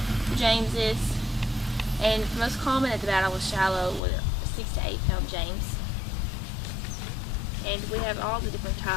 your Jameses. And the most common at the Battle of Shiloh was a 6 to 8 pound James. And we have all the different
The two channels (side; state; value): right; drops out; at 4.0 s